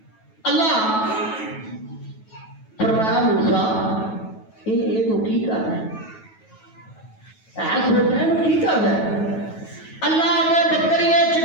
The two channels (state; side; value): late; right; 9.2 ms